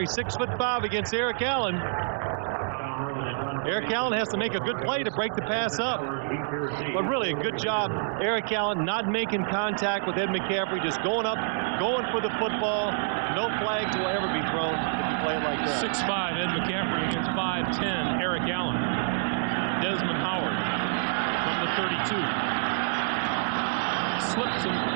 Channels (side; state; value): left; silent; digital silence